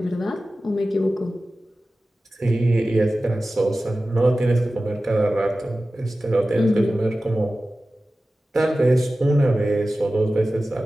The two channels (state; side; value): normal; both; correlation 0.95